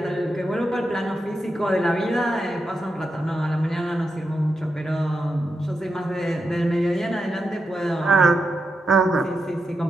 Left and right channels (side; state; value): both; normal; correlation 0.86